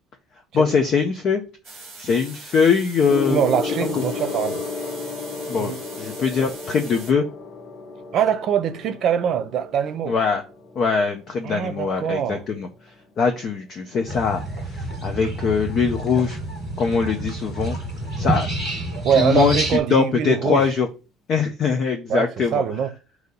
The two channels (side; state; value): both; normal; correlation 0.56